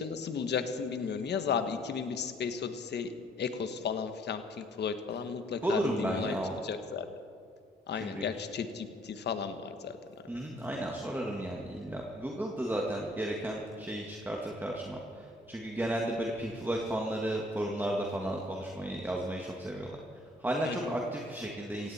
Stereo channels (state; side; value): normal; both; correlation 0.60